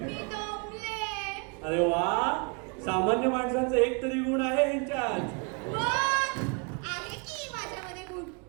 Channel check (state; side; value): quieter; left; 33.7 dB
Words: मी दमले. अरे वा, सामान्य माणसांचा एक तरी गुण आहे ह्यांच्यात. मग आहे की माझ्यामध्ये गुण.